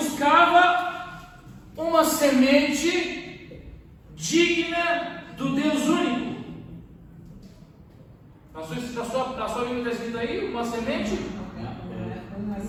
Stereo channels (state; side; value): identical; both; correlation 1.00